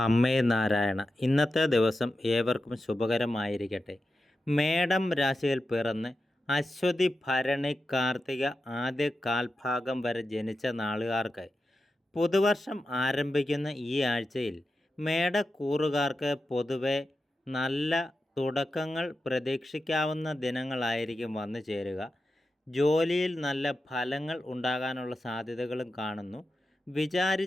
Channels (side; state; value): both; normal; correlation 0.91